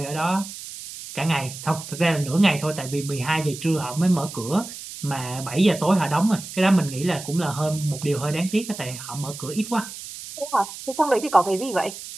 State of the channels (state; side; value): noise; right; hiss, 12 dB below the sound